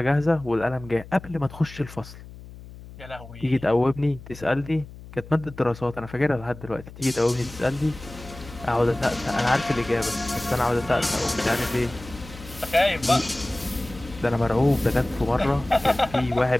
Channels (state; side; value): noise; left; hum, 16 dB below the sound